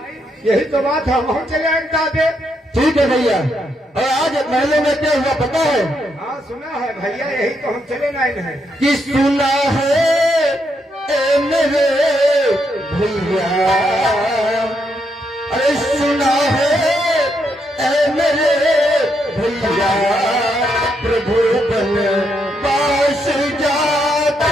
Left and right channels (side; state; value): both; normal; correlation 0.78